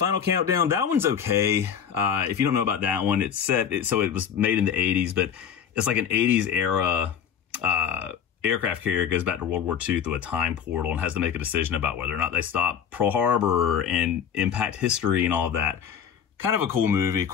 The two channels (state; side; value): quieter; right; 8.2 dB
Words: Countdown, that one's okay. If you don't know about that one, so it was made in the 80s, but it's like an 80s era aircraft carrier goes back to World War II through a time portal and has to make a decision about whether or not they stop Pearl Harbor and impact history and all of that. Kind of a cool movie,